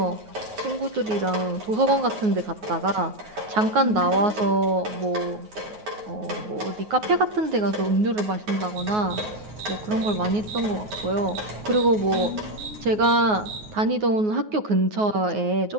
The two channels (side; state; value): left; late; 9.5 ms